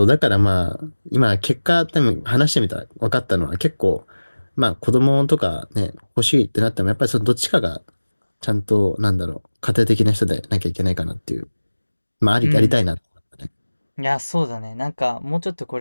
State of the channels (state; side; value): inverted; both; correlation -1.00